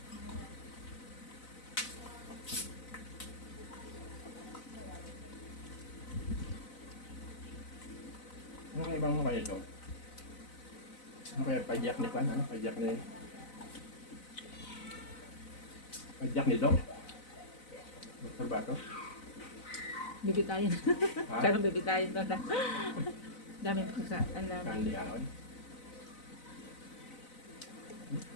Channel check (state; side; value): late; right; 4.0 ms